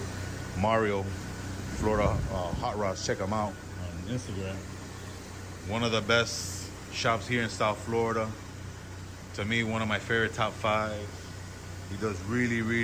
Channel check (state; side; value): identical; both; correlation 1.00